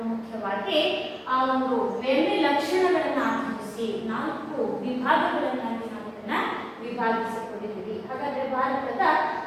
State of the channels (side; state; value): both; identical; correlation 1.00